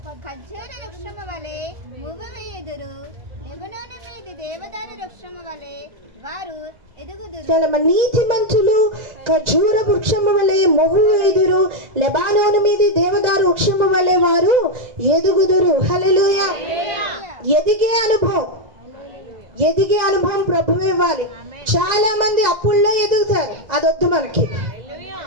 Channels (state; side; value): late; left; 1.9 ms